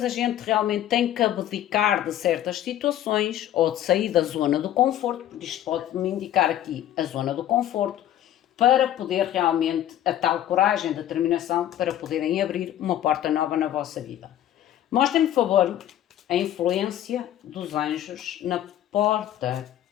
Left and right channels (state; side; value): quieter; right; 11.9 dB